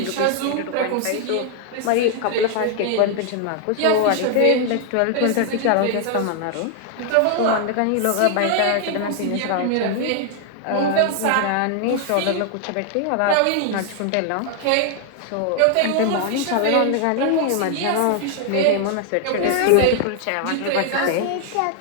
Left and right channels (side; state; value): both; different; correlation 0.00